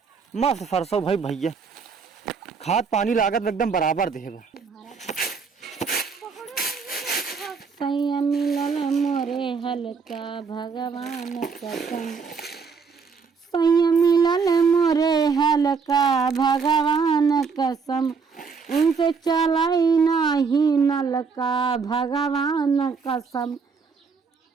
मस्त सरसों भाई भैया, खाद पानी लागत एकदम बराबर देबा। सैया मिलल मोरे हल्का भगवान कसम, सैया मिलल मोरे हल्का भगवान कसम, उनसे चलाई नहीं नलका भगवान कसम,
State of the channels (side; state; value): left; quieter; 5.4 dB